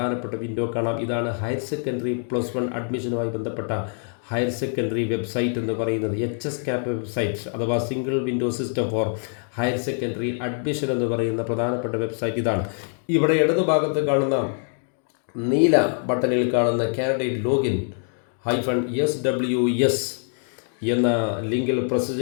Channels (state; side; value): silent; right; 59 dB below the other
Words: വിൻഡോ കാണാം. ഇതാണ് ഹയർ സെക്കൻഡറി +1 അഡ്മിഷനുമായി ബന്ധപ്പെട്ട ഹയർ സെക്കൻഡറി വെബ്സൈറ്റ് എന്ന് പറയുന്നത്. HSCAP വെബ്സൈറ്റ് അഥവാ single window system for higher secondary admission എന്ന് പറയുന്ന പ്രധാനപ്പെട്ട വെബ്സൈറ്റ് ഇതാണ്. ഇവിടെ ഇടതുഭാഗത്ത് കാണുന്ന നീല ബട്ടണിൽ കാണുന്ന കാൻഡിഡേറ്റ് ലോഗിൻ -SWS എന്ന ലിങ്കിൽ പ്രസ്